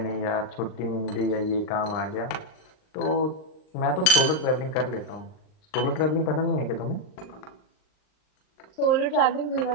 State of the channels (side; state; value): right; late; 39 ms